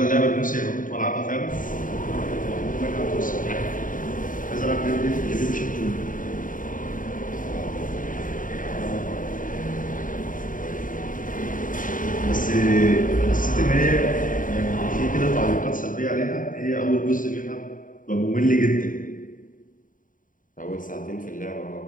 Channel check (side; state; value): right; late; 0.39 ms